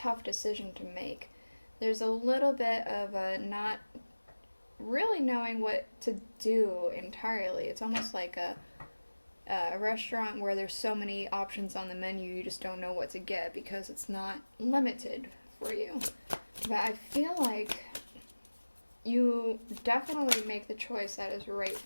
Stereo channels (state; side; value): inverted; both; correlation -1.00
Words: decision to make. There's a little bit of not really knowing what to do entirely. It's almost like a restaurant where there's so many options on the menu, you just don't know what to get because it's not limited for you. But I feel like you definitely make the choice that is right